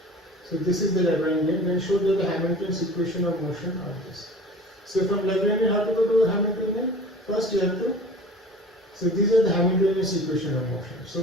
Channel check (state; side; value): normal; both; correlation 0.41